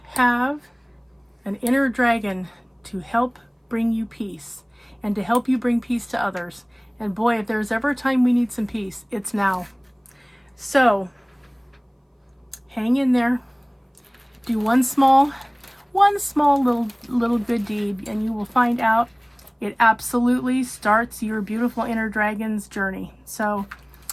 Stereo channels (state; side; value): identical; both; correlation 1.00